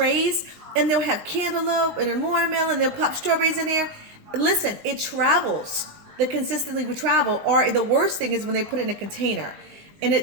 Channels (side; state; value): left; late; 20 ms